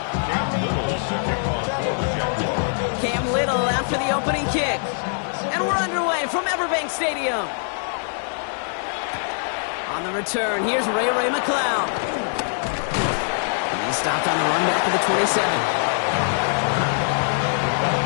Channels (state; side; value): silent; right; 63 dB below the other